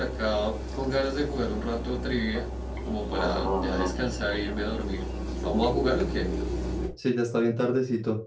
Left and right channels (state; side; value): identical; both; correlation 1.00